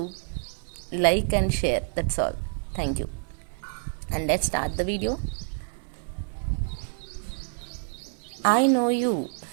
like and share, that's all. Thank you. And let's start the video. I know you.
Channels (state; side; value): silent; left; 60 dB below the other